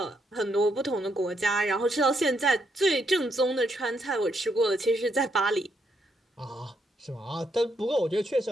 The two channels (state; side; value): normal; both; correlation 0.77